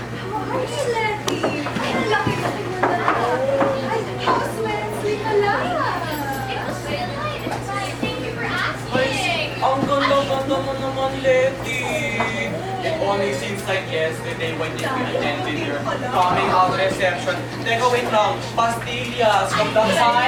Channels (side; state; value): both; identical; correlation 1.00